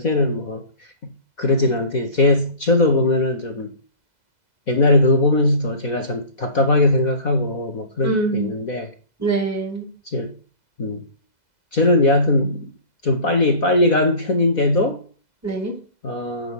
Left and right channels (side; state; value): right; late; 2.0 ms